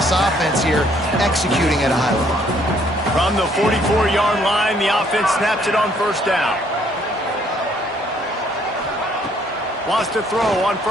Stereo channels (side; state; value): both; normal; correlation 0.65